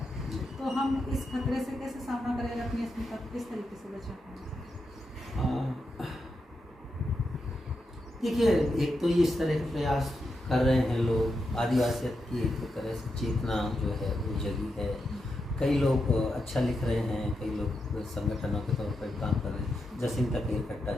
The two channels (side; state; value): both; normal; correlation 0.86